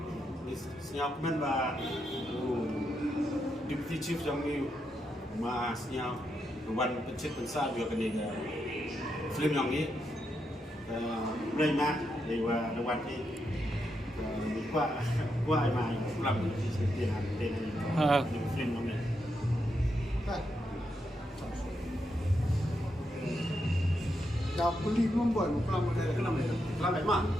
siap men ba. Deputy Chief yang ni masnya wan pencet pensar dia kena film yang ni. Boleh mah, dewa dewan ni. Qua ai mai làm tiền hàng tiền film yang ni. Dah beli membuat kelam ada Kenapa itu? Kenapa emang?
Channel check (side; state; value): both; normal; correlation 0.83